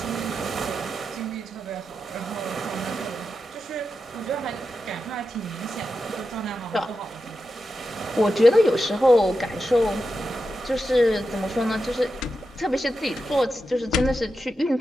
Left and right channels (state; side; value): normal; both; correlation 0.89